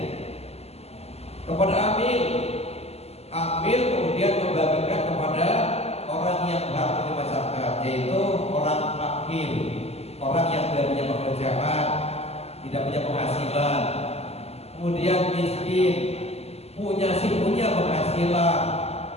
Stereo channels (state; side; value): late; right; 0.30 ms